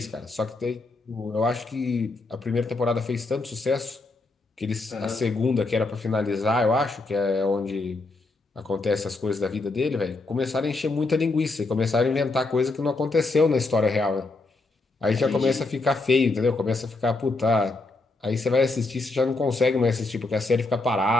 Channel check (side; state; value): right; quieter; 3.3 dB